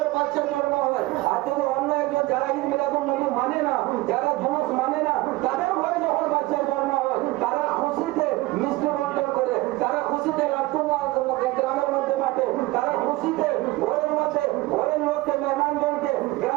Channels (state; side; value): quieter; left; 20.0 dB